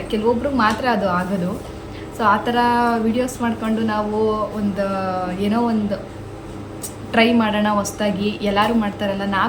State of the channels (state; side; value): identical; both; correlation 1.00